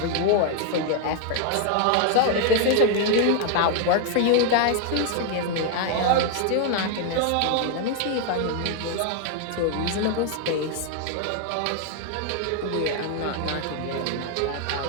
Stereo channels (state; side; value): different; both; correlation 0.00